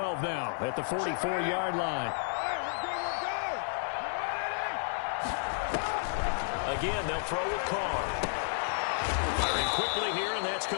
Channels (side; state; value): right; silent; digital silence